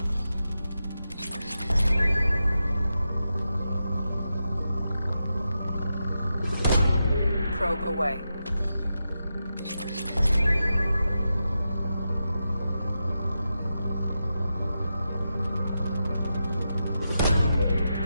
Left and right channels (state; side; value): inverted; both; correlation -0.89